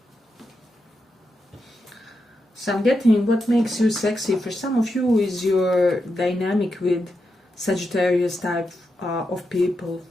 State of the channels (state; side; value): normal; both; correlation 0.86